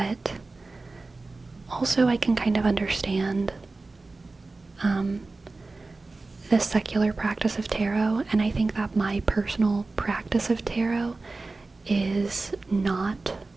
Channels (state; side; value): quieter; left; 3.5 dB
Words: also I can kind of understand the secular practice of tarot, and I think that my personal practice of tarot is not